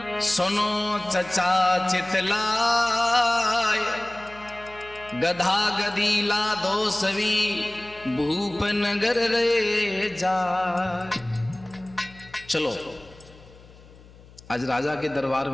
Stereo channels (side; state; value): left; noise; hum, 23 dB below the sound